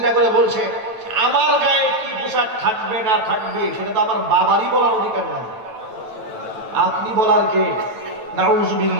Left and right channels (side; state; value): left; late; 9.1 ms